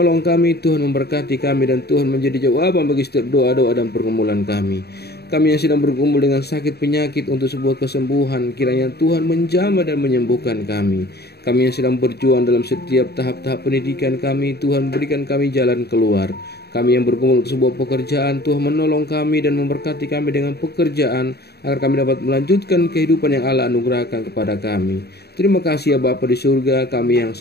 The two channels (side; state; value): right; late; 0.47 ms